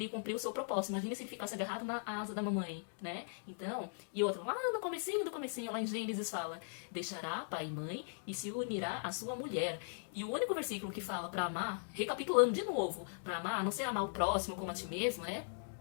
cumpriu o seu propósito. Imagine se ele ficasse agarrado na asa da mamãe, né? Então, e outra, lá no comecinho, lá em Gênesis fala, deixará pai e mãe e se unirá à sua mulher. E o único versículo que fala para amar, recapitulando de novo, para amar, não sei amar o próximo como a ti mesmo, né?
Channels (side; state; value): right; silent; digital silence